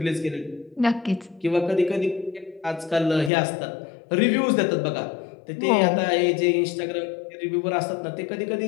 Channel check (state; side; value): drops out; right; at 3.3 s